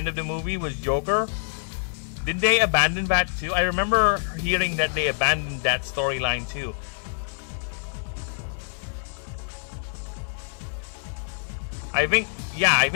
of the movie was Joker? Did they abandon that too? I remember hearing that they abandoned that storyline too. I think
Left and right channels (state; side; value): silent; right; digital silence